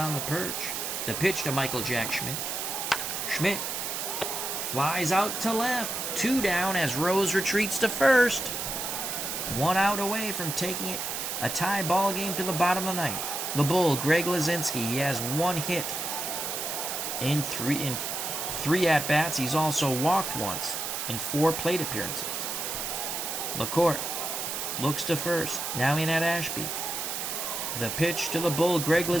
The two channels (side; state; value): right; noise; hiss, 3 dB below the sound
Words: the perch. The pitch to Michael Jack Schmidt. Schmidt flies out to left. 2 down as Rose retreats to first. 1 out away from taking it a tie ball game to the bottom of the 9th. The Bull, Greg Lazinski, he has 1 hit in 3 at-bats. He's also walked once in 4 plate appearances. LaCourte looks to first. Now in at Ashby. The pitch to the Bull, Greg